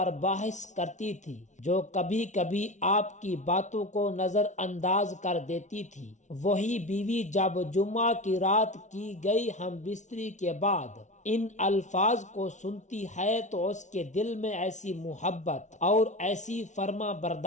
بحث کرتی تھی، جو کبھی کبھی آپ کی باتوں کو نظر انداز کر دیتی تھی، وہی بیوی جب جمعہ کی رات کی گئی ہم بستری کے بعد ان الفاظ کو سنتی ہے تو اس کے دل میں ایسی محبت اور ایسی فرما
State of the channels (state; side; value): late; right; 0.35 ms